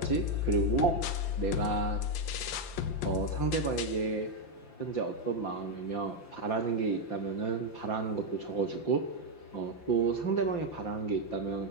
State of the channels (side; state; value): right; late; 5.8 ms